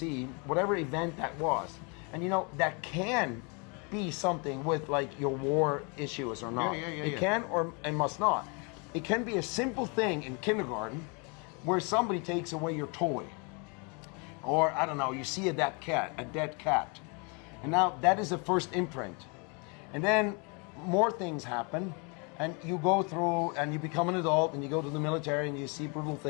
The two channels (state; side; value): quieter; right; 33.5 dB